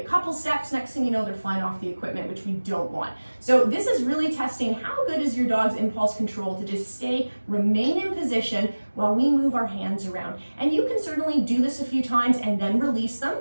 couple steps. Next thing you know, they're flying off the equipment, which we don't want. So this is really testing how good is your dog's impulse control to just remain in position while we move our hands around. And you can certainly do this a few times and then release them.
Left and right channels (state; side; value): inverted; both; correlation -1.00